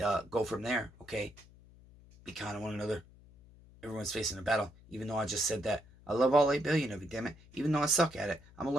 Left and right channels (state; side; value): noise; left; hum, 24 dB below the sound